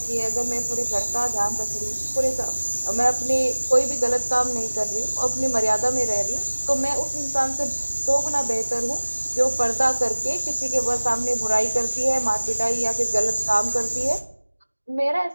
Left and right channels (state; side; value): inverted; both; correlation -1.00